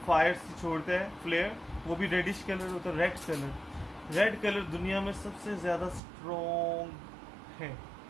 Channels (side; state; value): left; drops out; at 6.0 s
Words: फायर से छोड़ता है, फ्लेयर, वो भी रेडिश कलर होता है, रेड कलर। रेड कलर दुनिया में सबसे ज़्यादा स्ट्रॉन्ग है।